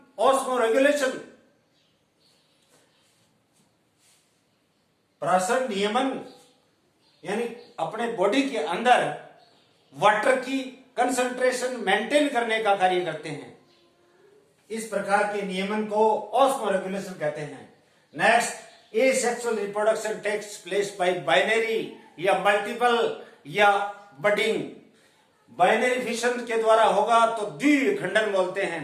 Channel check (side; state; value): both; identical; correlation 1.00